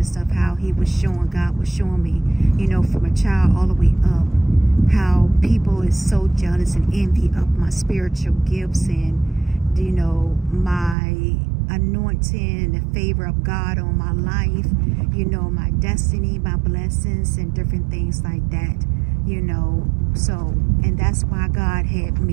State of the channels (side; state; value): left; drops out; at 11.0 s